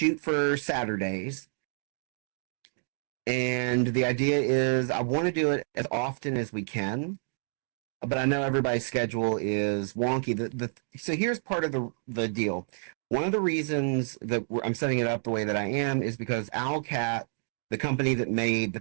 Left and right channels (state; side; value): silent; left; digital silence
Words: for Saturdays. And the idea is I want to do it as often as we can. But I know everybody's schedule is wonky. So here's part of the deal. One of the reasons that I'm setting it up the way that I am is because Owlcat, the company that made the